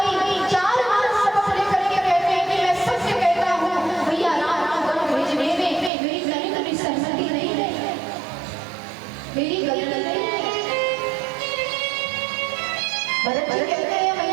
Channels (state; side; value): drops out; left; at 5.9 s